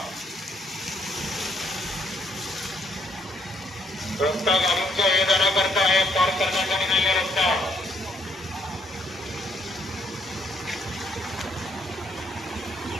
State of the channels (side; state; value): both; normal; correlation 0.71